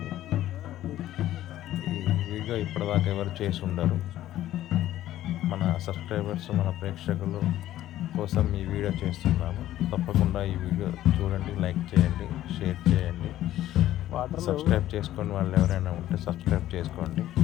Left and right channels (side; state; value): right; quieter; 13.5 dB